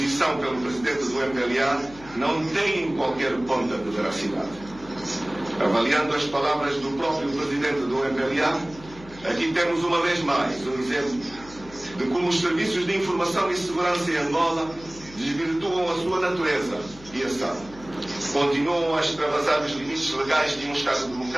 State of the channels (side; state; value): left; noise; hum, 20 dB below the sound